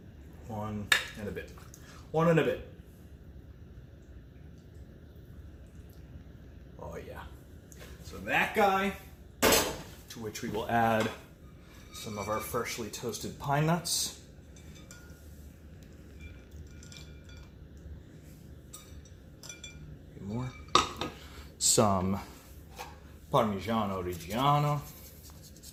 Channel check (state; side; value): identical; both; correlation 1.00